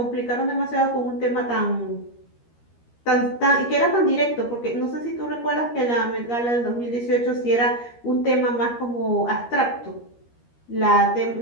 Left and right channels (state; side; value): late; right; 13 ms